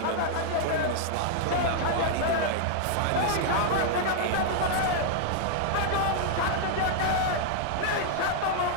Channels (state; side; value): different; both; correlation -0.01